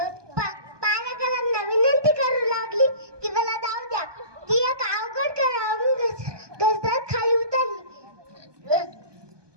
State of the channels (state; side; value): late; left; 1.2 ms